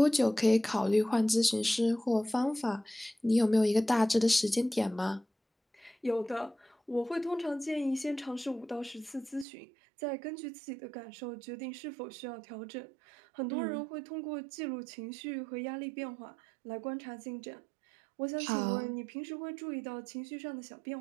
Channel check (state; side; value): drops out; left; at 9.5 s